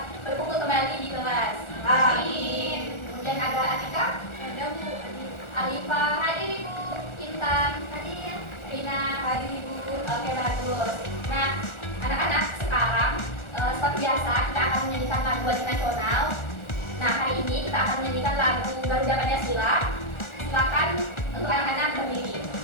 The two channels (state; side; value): late; right; 1.4 ms